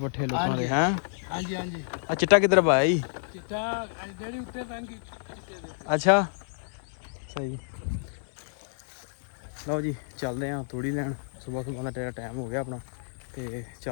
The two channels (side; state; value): right; silent; digital silence